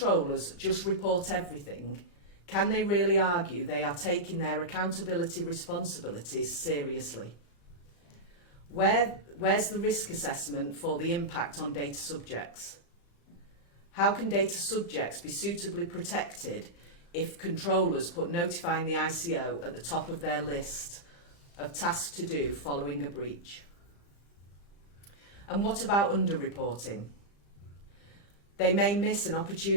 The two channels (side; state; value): right; late; 35 ms